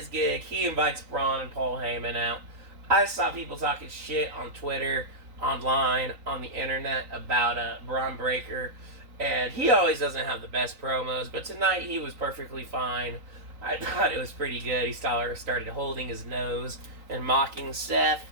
gig. He invites Braun and Paul Heyman out. I saw people talking shit on Twitter, online, on the internet about Braun Breaker. And he always doesn't have the best promos, but tonight he was perfectly fine. I thought it was pretty good. He started holding his nose and mocking Seth.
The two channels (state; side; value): late; left; 3.9 ms